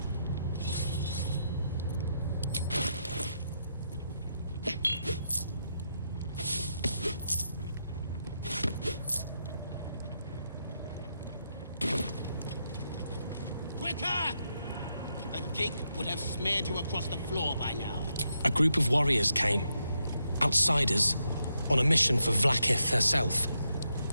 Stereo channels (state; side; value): inverted; both; correlation -0.82